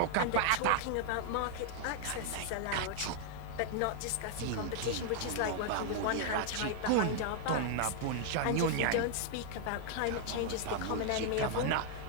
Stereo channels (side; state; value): both; different; correlation -0.01